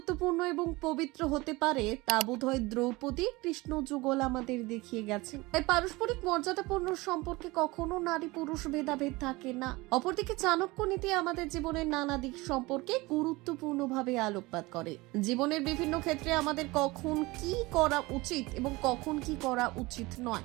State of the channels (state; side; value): quieter; left; 22.3 dB